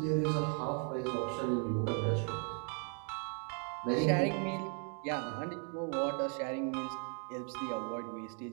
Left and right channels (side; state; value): left; quieter; 38.2 dB